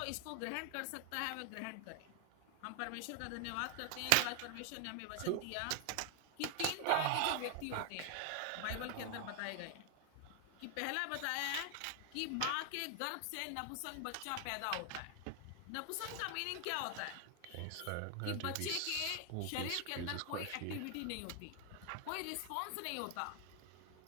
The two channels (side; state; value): both; different; correlation 0.00